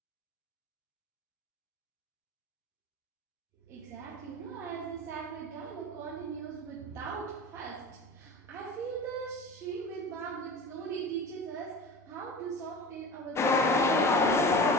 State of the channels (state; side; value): normal; both; correlation 0.34